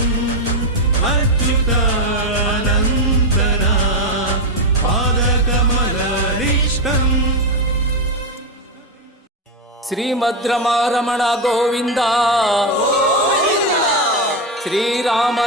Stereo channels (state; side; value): normal; both; correlation 0.08